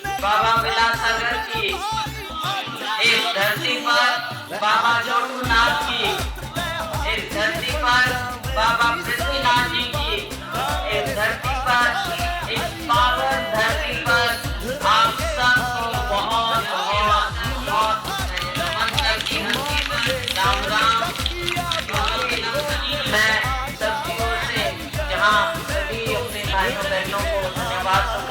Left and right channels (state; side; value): identical; both; correlation 1.00